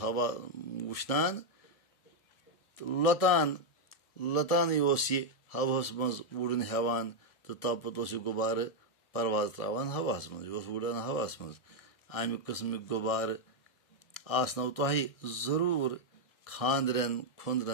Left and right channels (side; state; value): right; late; 1.7 ms